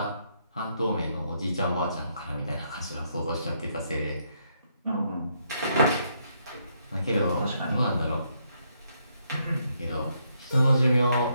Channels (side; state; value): both; inverted; correlation -0.75